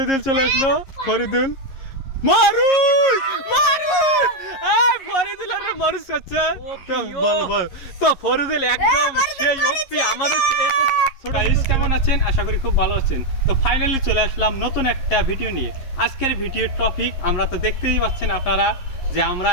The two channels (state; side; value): late; right; 11 ms